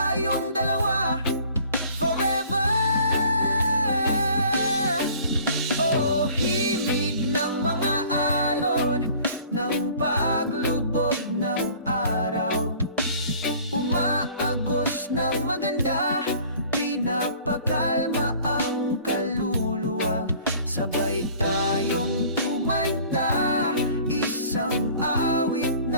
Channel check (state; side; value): inverted; both; correlation -0.50